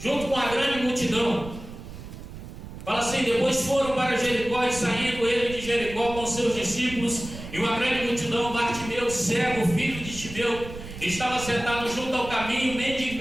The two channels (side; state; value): right; noise; rumble, 12 dB below the sound